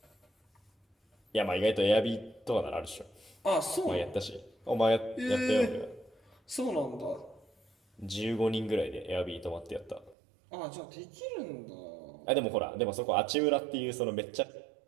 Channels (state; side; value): drops out; left; at 10.2 s